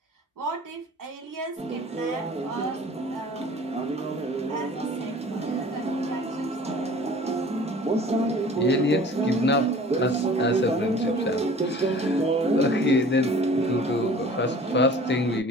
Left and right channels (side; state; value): both; normal; correlation 0.46